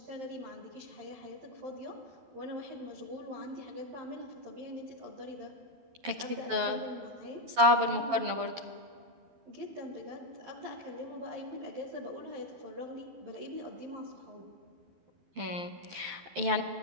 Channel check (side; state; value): left; late; 12 ms